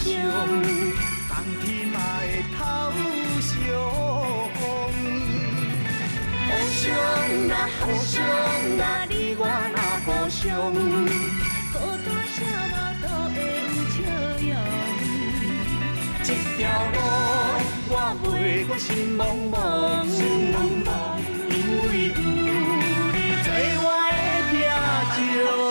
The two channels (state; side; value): inverted; both; correlation -1.00